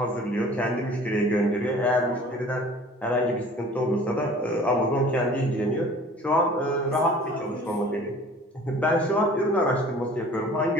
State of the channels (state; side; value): normal; both; correlation 0.48